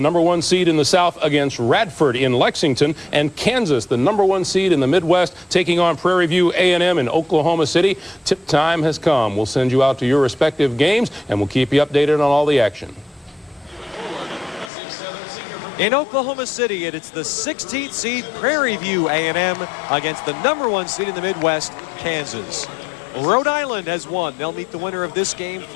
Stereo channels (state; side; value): drops out; right; at 14.7 s